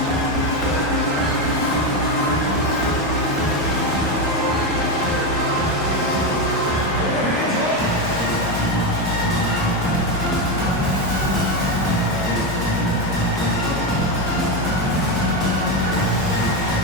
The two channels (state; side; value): normal; both; correlation 0.12